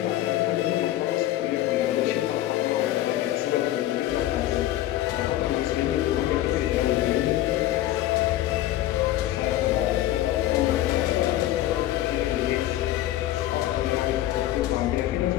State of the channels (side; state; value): right; quieter; 14.1 dB